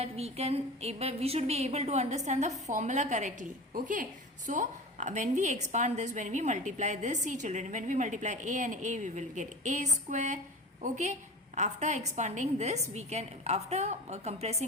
we should be able to understand the formula correctly. Okay, so when we expand this, when we multiply this, see children, when we multiply a and a, we will get a square. Okay, after expanding this, after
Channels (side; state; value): both; normal; correlation 0.34